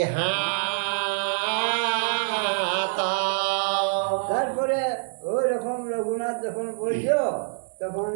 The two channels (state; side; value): silent; left; digital silence